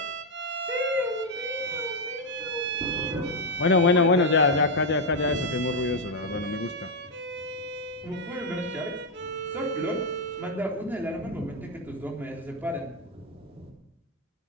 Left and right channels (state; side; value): normal; both; correlation 0.02